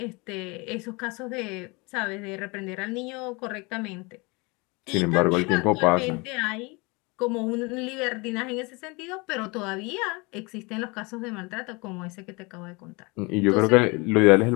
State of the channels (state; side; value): quieter; right; 27.2 dB